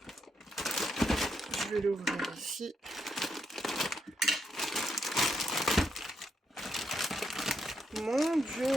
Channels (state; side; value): normal; both; correlation 0.80